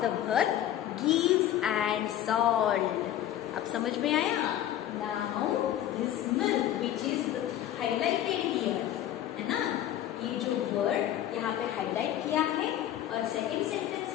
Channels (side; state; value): right; quieter; 11.9 dB